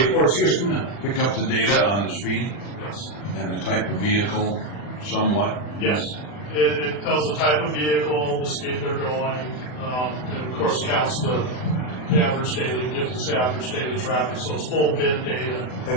up the data on the speed and the type of vehicle somewhat. Yes. It tells the type of vehicle, the speed they're going, and of course counts the average daily, gives us average daily traffic, so it's full bid data.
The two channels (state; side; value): late; right; 40 ms